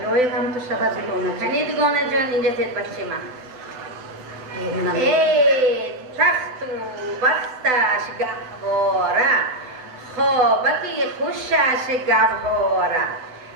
شود دوگانه جان کنی دوگانه جان اینجا تید بچه من ای تخت و بختش گهواره خوابکی خوشش گهواره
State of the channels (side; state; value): left; late; 7.9 ms